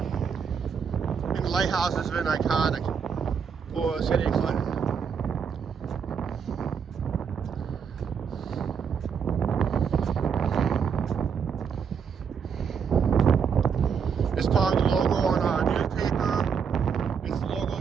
And the lighthouse has been iconic for City of Clinton. It's probably the logo on our newspaper. It's the logo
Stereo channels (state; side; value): quieter; left; 6.7 dB